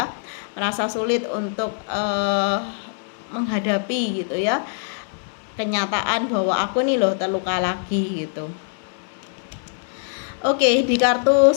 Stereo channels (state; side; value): silent; right; digital silence